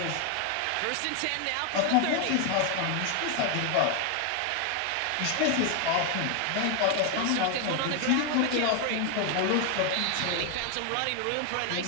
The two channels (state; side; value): different; both; correlation 0.01